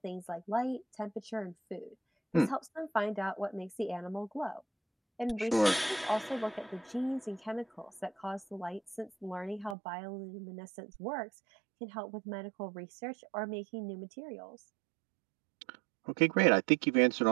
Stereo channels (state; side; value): drops out; left; at 9.8 s